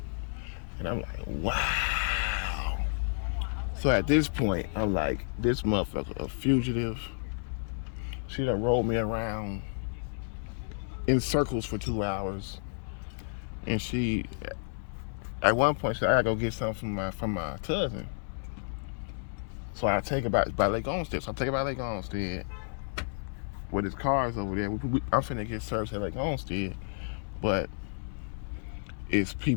And I'm like, wow. So at this point, I'm like, this motherfucker a fugitive. She done rolled me around in circles for 2 hours. And she, at one point, she said, I gotta go get something from my cousin. So I take it by Lake Olmsted. So I take it by Lake Olmsted. With his cars over there. I'm finna get service at Lake Olmsted. But it's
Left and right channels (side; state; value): right; silent; digital silence